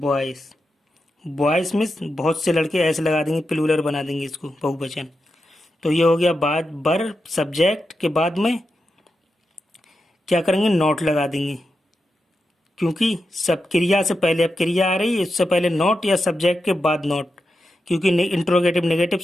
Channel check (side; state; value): both; normal; correlation 0.88